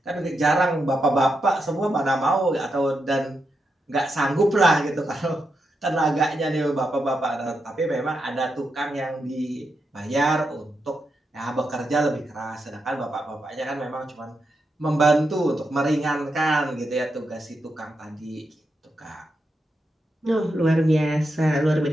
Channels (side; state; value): both; normal; correlation 0.85